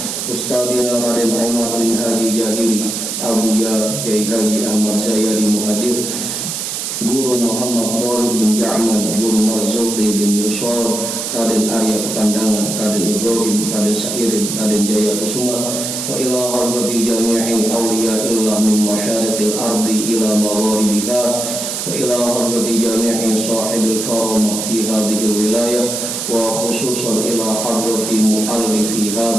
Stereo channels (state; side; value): noise; right; hiss, 4 dB below the sound